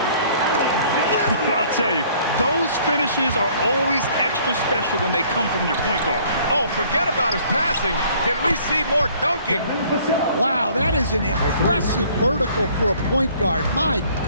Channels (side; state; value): both; inverted; correlation -0.57